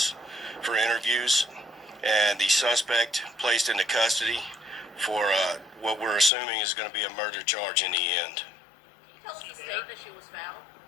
for interviews, and the suspect placed into custody for what we're assuming is going to be a murder charge in the end. Can you tell us the state that she was found?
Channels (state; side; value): drops out; right; at 6.3 s